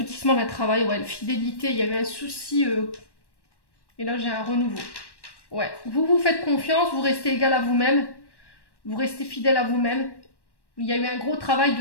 d'un travail, ouais, fidélité, il y avait un souci, et là j'ai un renouveau. Ouais, vous vous faites confiance, vous restez égal à vous-même, vous restez fidèle à vous-même. Il y a eu un gros travail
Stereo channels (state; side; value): late; right; 1.1 ms